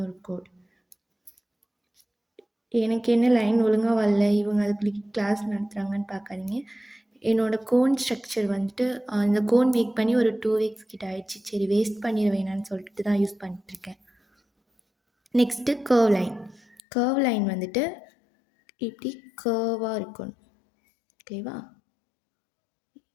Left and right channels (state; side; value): drops out; right; at 16.8 s